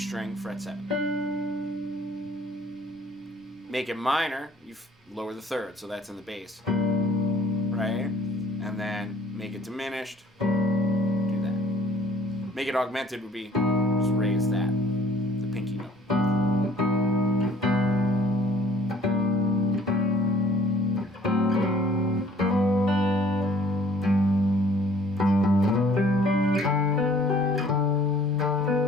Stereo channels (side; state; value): both; normal; correlation 0.56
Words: fret 7. Make it minor, you lower the 3rd, so that's in the bass. Right? And then make it diminished, do that. Make it augmented would be just raise that, the pinky note.